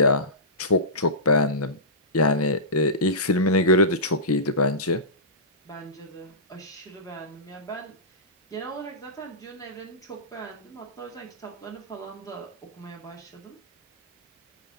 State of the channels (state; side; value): normal; both; correlation -0.20